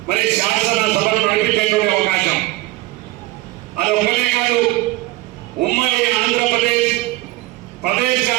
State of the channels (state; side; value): quieter; left; 19.1 dB